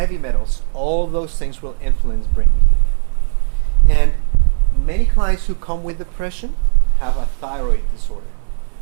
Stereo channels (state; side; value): silent; left; digital silence